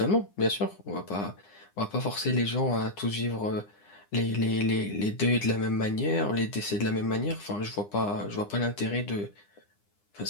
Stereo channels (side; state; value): right; late; 9.9 ms